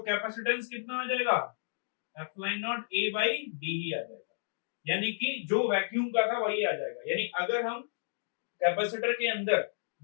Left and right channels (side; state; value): right; silent; digital silence